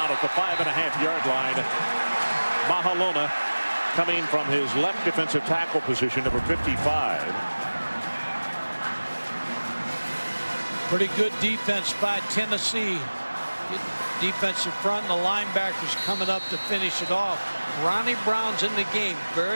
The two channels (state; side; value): inverted; both; correlation -1.00